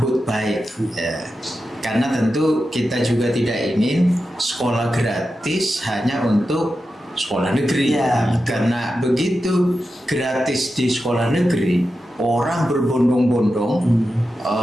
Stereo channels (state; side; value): normal; both; correlation 0.91